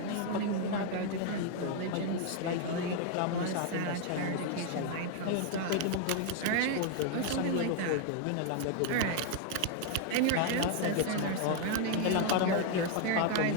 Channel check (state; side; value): different; both; correlation 0.00